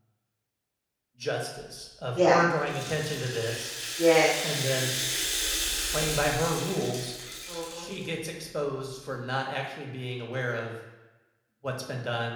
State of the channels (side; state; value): both; identical; correlation 1.00